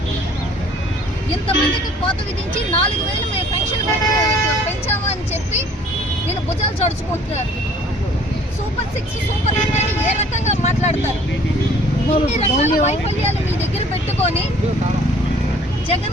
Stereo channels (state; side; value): normal; both; correlation 0.55